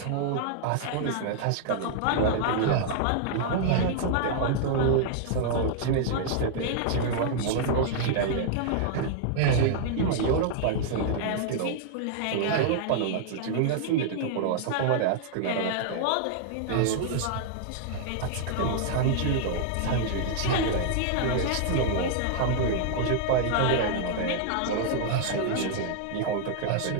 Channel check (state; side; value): different; both; correlation -0.01